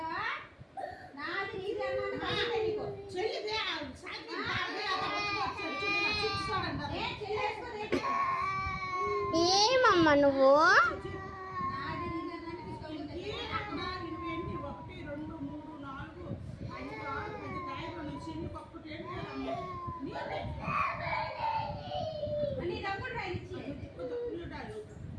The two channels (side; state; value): both; identical; correlation 1.00